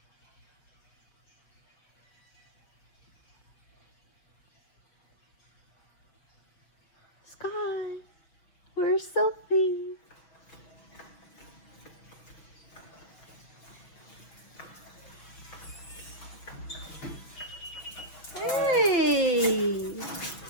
Sky, where's Sophie?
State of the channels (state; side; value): late; right; 5.9 ms